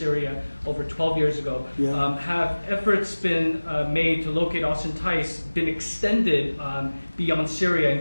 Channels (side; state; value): both; inverted; correlation -1.00